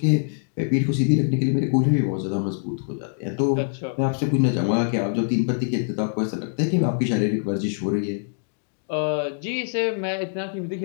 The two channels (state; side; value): silent; right; digital silence